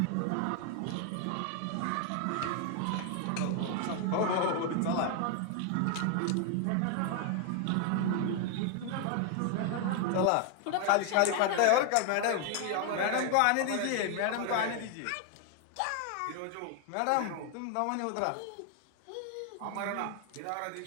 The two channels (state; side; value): different; both; correlation 0.00